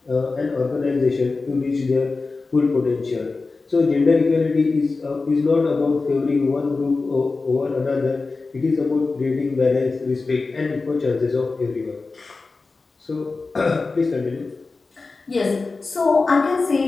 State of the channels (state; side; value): quieter; right; 3.9 dB